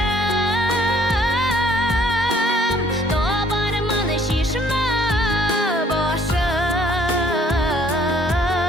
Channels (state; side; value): normal; both; correlation 0.60